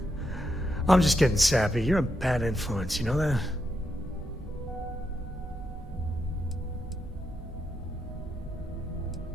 I'm just getting sappy. You're a bad influence, you know that?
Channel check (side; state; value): both; normal; correlation 0.81